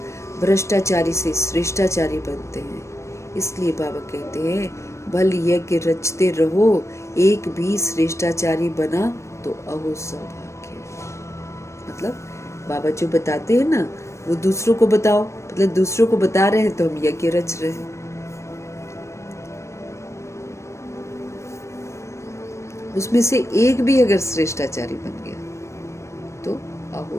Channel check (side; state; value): right; late; 0.14 ms